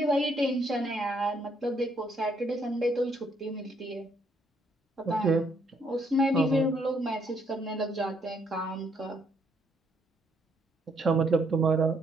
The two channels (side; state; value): both; normal; correlation 0.71